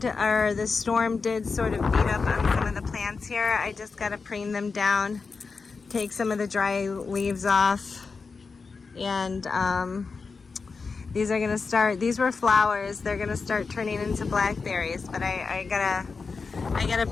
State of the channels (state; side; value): quieter; right; 4.7 dB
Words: or the storm, did sort of beat up on some of the plants here. I just got to prune them down, take some of the dry leaves off. And these are gonna start, these were flowers, they're gonna start turning into blackberries, but I gotta